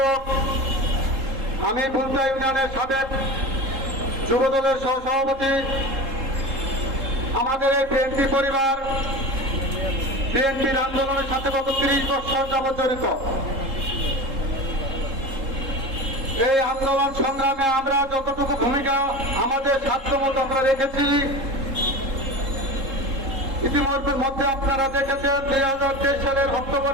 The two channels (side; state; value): left; late; 3.7 ms